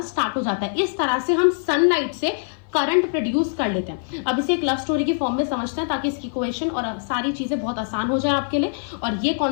स्टार्ट हो जाता है। इस तरह से हम सनलाइट से करंट प्रोड्यूस कर लेते हैं। अब इसे एक लव स्टोरी की फॉर्म में समझते हैं ताकि इसकी इक्वेशन और सारी चीजें बहुत आसान हो जाए आपके लिए। और ये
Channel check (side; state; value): right; silent; 56 dB below the other